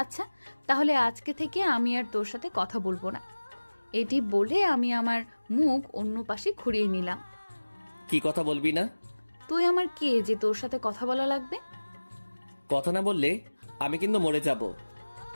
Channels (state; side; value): inverted; both; correlation -1.00